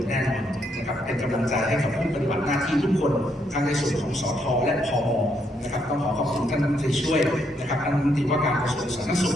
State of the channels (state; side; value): normal; both; correlation 0.75